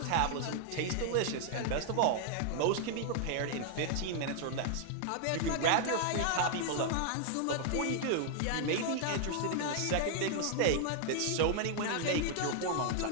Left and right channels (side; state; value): both; different; correlation 0.00